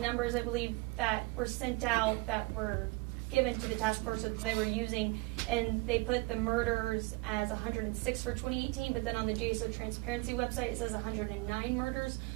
I believe, that were sent out that were given to the task force that they were using, and they put the murders as 106 for 2018, but then on the JSO transparency website it says 109 murders.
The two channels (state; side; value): quieter; left; 24.6 dB